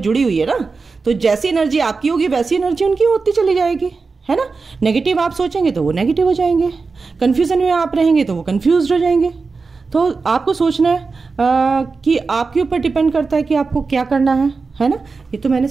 हुई है ना। तो जैसी एनर्जी आपकी होगी वैसी एनर्जी उनकी होती चली जाएगी, है ना। नेगेटिव आप सोचेंगे तो वो नेगेटिव हो जाएंगे, कंफ्यूजन में आप रहेंगे तो वो कंफ्यूज हो जाएंगे। तो आपको सोचना है कि आपके ऊपर डिपेंड करता है कि आपको क्या करना है ना। ये तो मैंने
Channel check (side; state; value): left; quieter; 4.4 dB